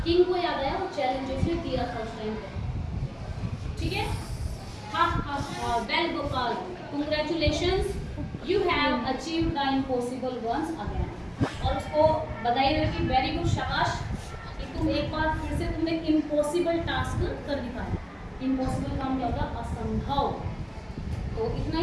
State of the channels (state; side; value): identical; both; correlation 1.00